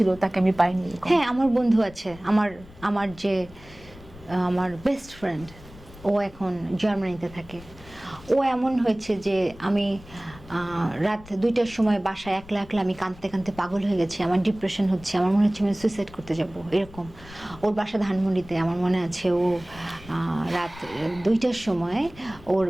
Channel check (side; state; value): left; noise; rumble, 20 dB below the sound